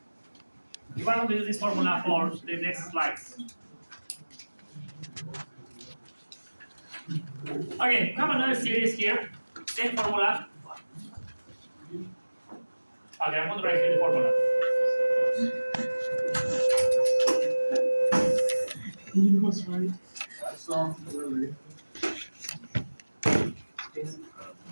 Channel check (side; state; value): both; inverted; correlation -1.00